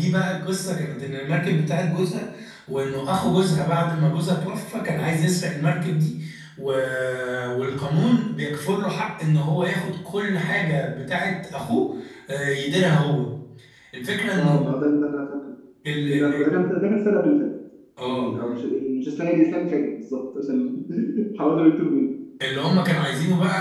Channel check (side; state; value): both; identical; correlation 1.00